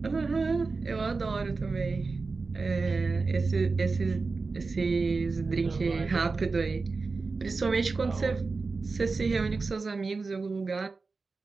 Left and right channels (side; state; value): left; quieter; 4.1 dB